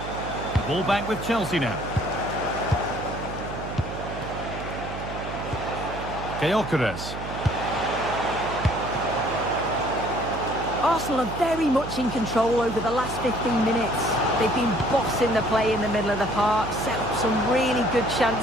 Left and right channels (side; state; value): right; noise; hum, 9 dB below the sound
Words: The ball back with Chelsea now. Gyökeres. Arsenal are very much in control over the last 15 minutes. They've been bossing the play in the middle of the park, set up some really good